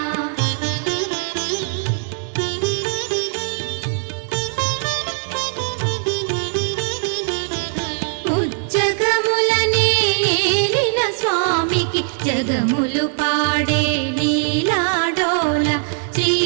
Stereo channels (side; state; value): left; silent; digital silence